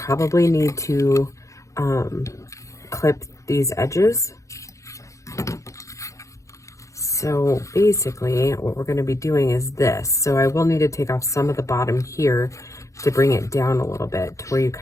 need to clip these edges. So basically what we're going to be doing is this. So I will need to take off some of the bottom here to bring it down a little bit to where you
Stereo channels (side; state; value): right; late; 0.15 ms